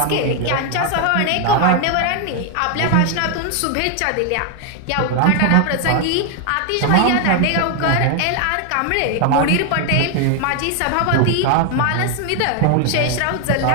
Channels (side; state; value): both; different; correlation 0.00